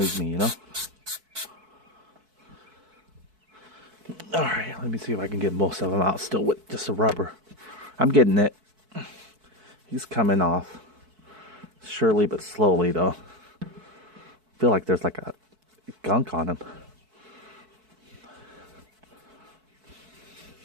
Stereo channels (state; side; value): late; left; 4.6 ms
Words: me, you know? Alright, let me see if I can get most of them out still with just a rubber. I'm getting it. He's coming off. Surely but slowly though. I feel like there's like a gunk on him.